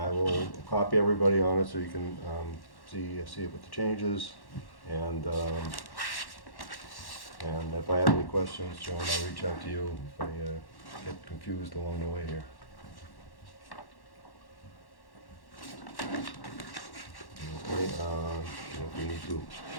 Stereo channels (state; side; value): late; right; 1.1 ms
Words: will copy everybody on it so you can see it with the changes, and if I have any questions, Joan, I'll reach out to you if I get confused along the way here. Okay, if we need to,